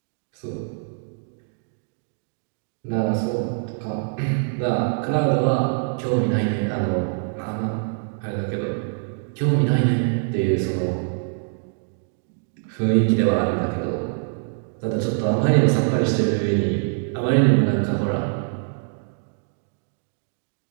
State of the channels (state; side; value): silent; left; digital silence